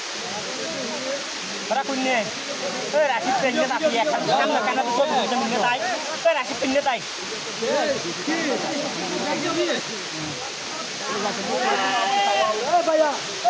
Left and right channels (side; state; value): both; identical; correlation 1.00